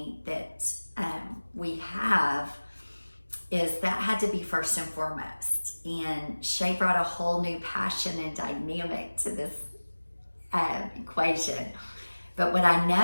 that we have, is that had to be first and foremost. And Shay brought a whole new passion and dynamic to this equation. But what I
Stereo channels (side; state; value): both; inverted; correlation -1.00